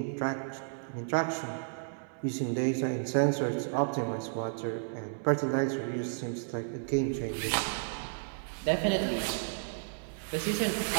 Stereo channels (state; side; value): silent; left; 56 dB below the other